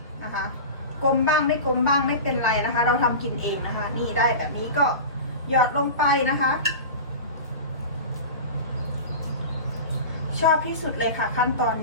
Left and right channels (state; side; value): inverted; both; correlation -0.30